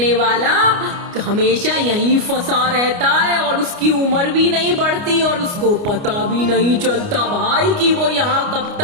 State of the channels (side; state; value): left; late; 29 ms